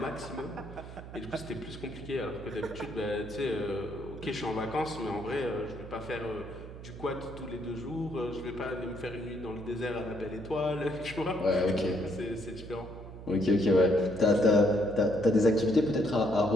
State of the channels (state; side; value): noise; right; hum, 13 dB below the sound